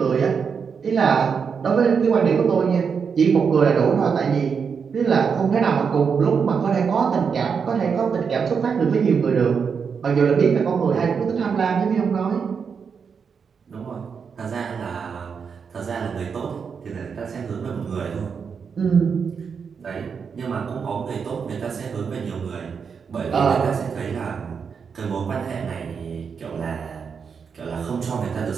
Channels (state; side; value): quieter; left; 6.2 dB